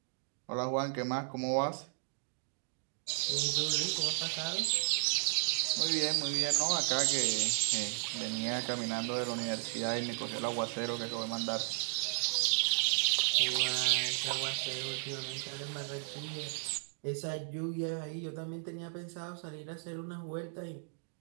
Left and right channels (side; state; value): left; silent; digital silence